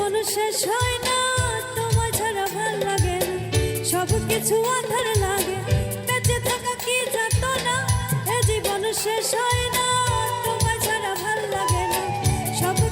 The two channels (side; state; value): both; identical; correlation 1.00